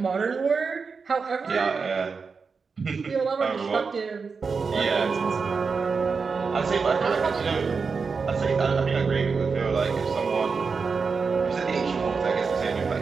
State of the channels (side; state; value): left; quieter; 5.1 dB